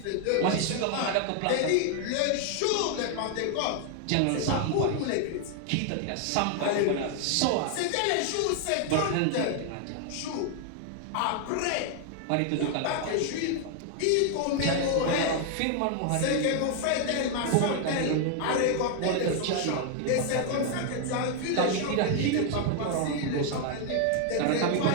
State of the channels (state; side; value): different; both; correlation 0.00